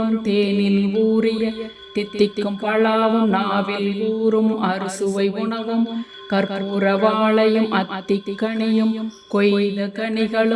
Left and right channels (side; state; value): both; identical; correlation 1.00